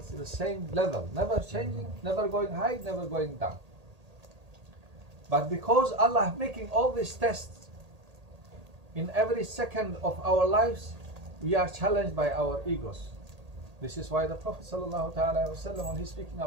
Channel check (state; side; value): late; left; 1.8 ms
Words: at the same level, never changing, never going high, never going down. But because Allah making all these tests in every second of our lives, we are challenged by our egos. This is why the Prophet ﷺ, when he's speaking